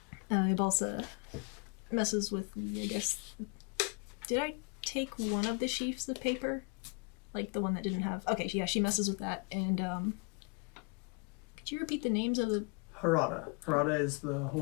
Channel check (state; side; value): quieter; right; 35.1 dB